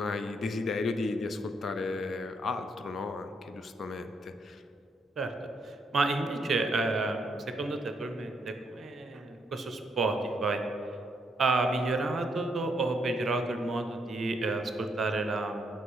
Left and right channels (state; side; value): normal; both; correlation 0.76